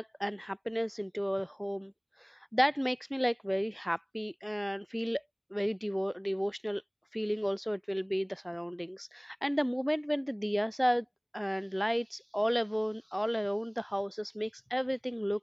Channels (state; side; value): identical; both; correlation 1.00